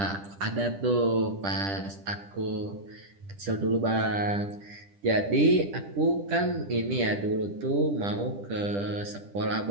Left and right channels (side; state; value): left; late; 10 ms